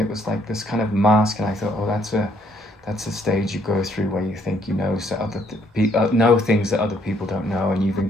was like this kind of mask. And I thought, oh, that's a stage you go through where you think know things that other people don't know, and you've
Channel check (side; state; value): both; normal; correlation 0.68